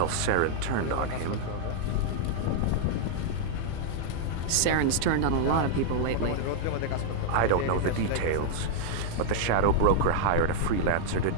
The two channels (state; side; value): different; both; correlation -0.01